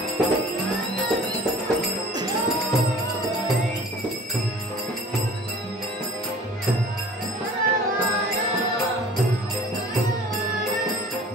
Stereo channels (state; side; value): normal; both; correlation 0.47